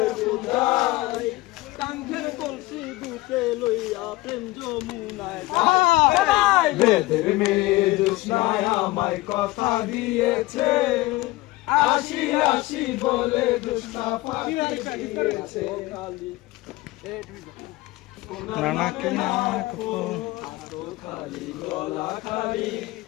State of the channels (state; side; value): quieter; right; 19.7 dB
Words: বুঝাই, কাঙ্ক্ষের কলসি বুকে লইয়া প্রেম যমুনায় যাই। বেদের মেয়ে জোৎস্নায় আমায় কথা দিয়েছে, আসি আসি বলে জোৎস্না ফাঁকি দিয়েছে। নানা কে নাক খালি গলা খালি